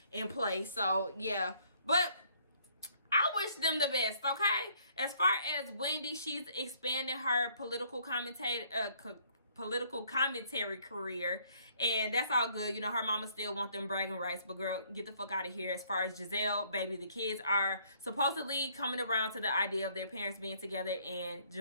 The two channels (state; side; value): inverted; both; correlation -0.63